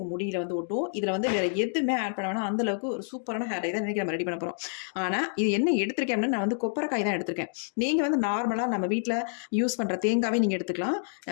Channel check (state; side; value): silent; right; digital silence